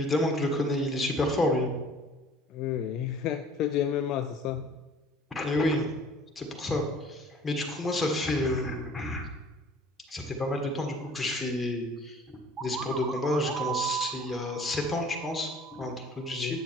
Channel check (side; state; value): both; normal; correlation 0.51